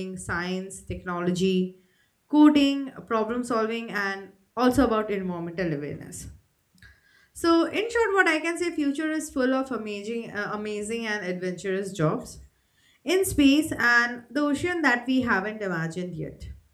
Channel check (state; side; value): identical; both; correlation 1.00